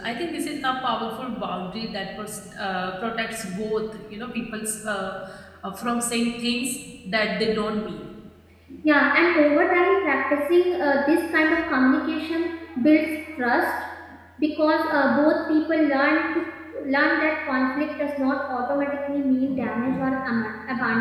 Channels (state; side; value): identical; both; correlation 1.00